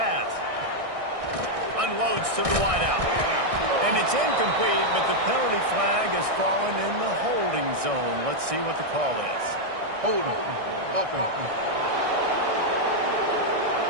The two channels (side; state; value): left; late; 1.6 ms